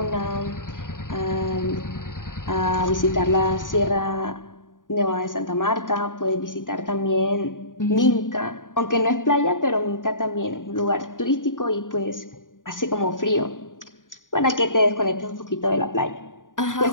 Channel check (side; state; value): right; late; 0.88 ms